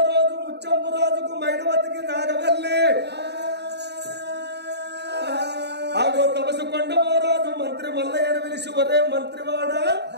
రోజు ముచ్చంపు రాజుకు మైనవతికి నాగవెల్లి ఆగో తపసు కొండమో రాజు మంత్రి మల్లయ్యను పిలిచి, ఒరే మంత్రివాడ,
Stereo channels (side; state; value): left; late; 0.49 ms